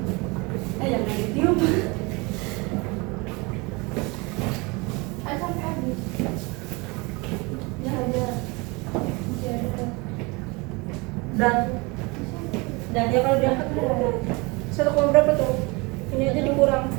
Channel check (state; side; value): quieter; left; 26.6 dB